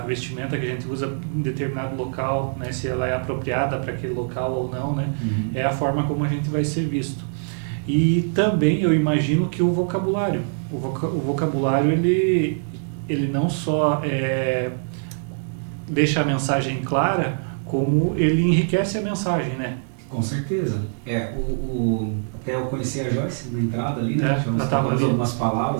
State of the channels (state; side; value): silent; left; digital silence